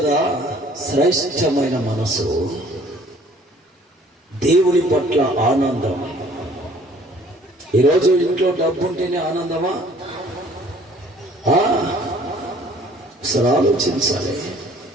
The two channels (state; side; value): normal; both; correlation 0.55